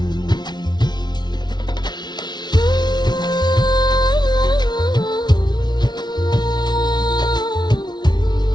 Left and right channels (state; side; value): late; right; 0.20 ms